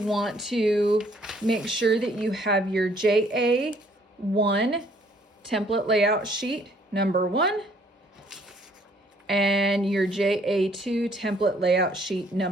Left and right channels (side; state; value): both; normal; correlation 0.63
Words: to make sure that you have your JA1 template layout sheet number 1 and your JA2 template layout sheet